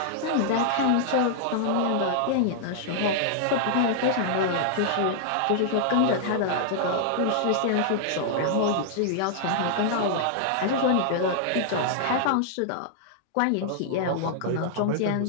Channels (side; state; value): both; different; correlation -0.01